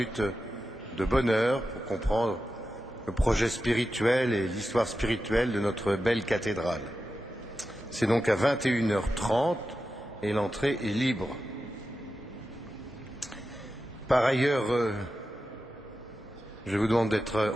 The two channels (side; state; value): both; normal; correlation 0.91